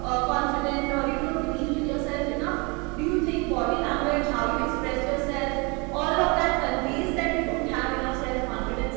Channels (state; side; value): quieter; left; 29.4 dB